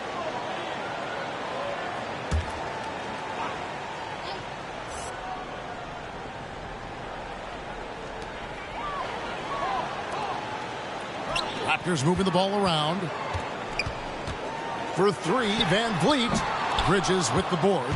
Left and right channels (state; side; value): identical; both; correlation 1.00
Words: Raptors moving the ball around. For three, Van Vliet. Bridges with the board.